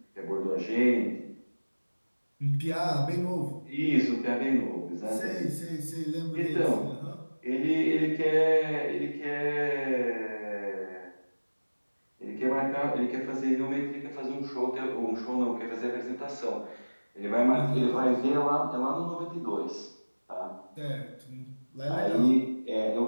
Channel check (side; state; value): both; inverted; correlation -1.00